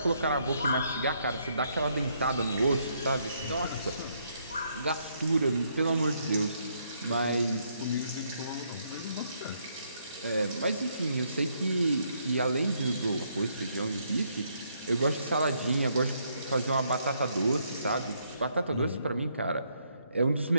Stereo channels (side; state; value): both; inverted; correlation -0.73